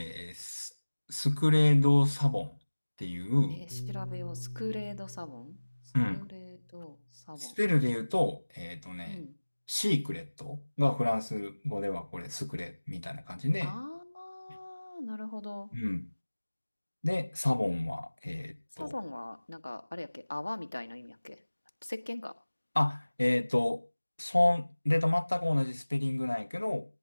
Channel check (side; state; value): both; inverted; correlation -1.00